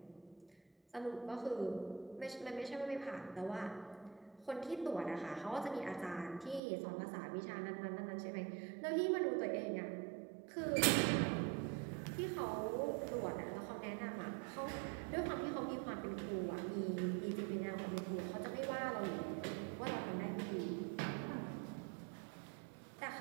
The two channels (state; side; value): drops out; left; at 6.6 s